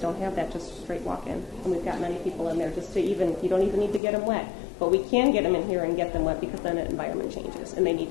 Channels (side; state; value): right; drops out; at 4.0 s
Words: have that just straight walk-in. And we've got many people in there just to even, you don't even need to get them wet. But we can get them in here and get them wet because then the environment changes. And they need